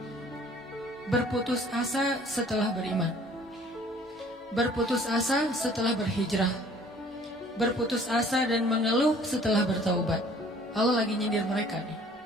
berputus asa setelah beriman, berputus asa setelah berhijrah, berputus asa dan mengeluh setelah bertaubat. Allah lagi nyindir mereka nih.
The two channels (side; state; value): both; normal; correlation 0.54